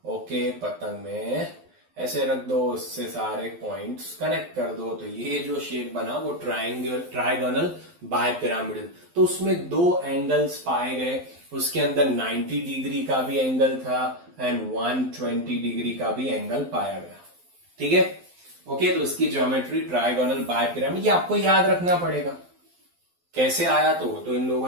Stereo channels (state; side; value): late; left; 12 ms